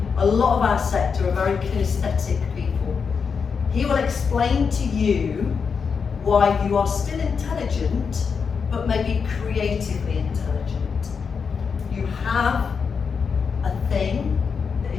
A lot of our sector are very kinesthetic people. He will explain to you why you are still intelligent, but maybe creatively intelligent. You have a thing that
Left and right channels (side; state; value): right; quieter; 5.9 dB